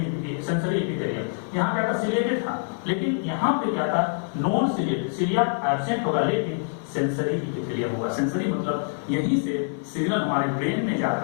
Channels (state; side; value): silent; right; 57 dB below the other